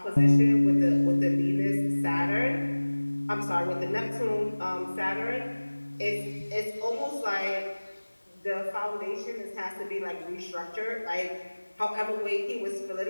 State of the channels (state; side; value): inverted; both; correlation -1.00